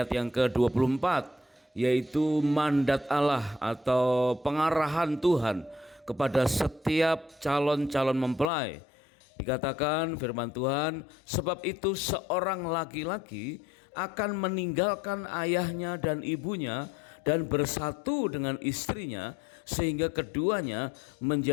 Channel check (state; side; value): drops out; right; at 8.5 s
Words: yang ke-24, yaitu mandat Allah atau pengarahan Tuhan kepada setiap calon-calon mempelai. Dikatakan firman Tuhan, sebab itu seorang laki-laki akan meninggalkan ayahnya dan ibunya dan bersatu dengan istrinya sehingga keduanya